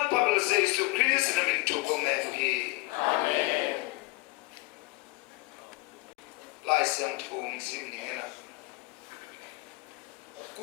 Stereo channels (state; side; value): quieter; right; 23.2 dB